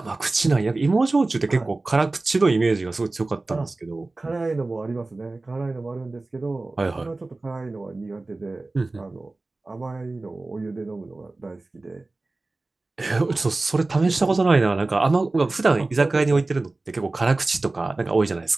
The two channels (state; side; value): quieter; left; 3.2 dB